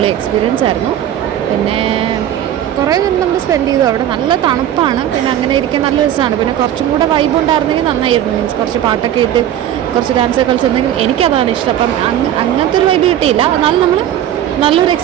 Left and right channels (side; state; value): left; quieter; 11.3 dB